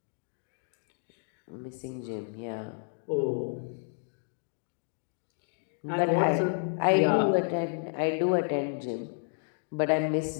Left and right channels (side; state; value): right; silent; 57 dB below the other